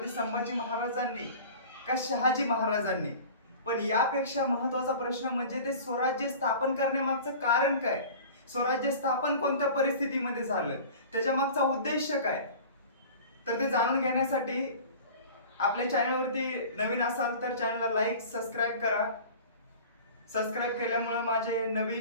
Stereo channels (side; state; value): both; inverted; correlation -0.40